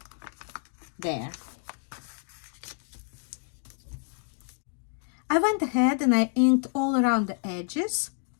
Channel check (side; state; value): right; silent; 59 dB below the other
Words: There. I went ahead and I inked all around the edges,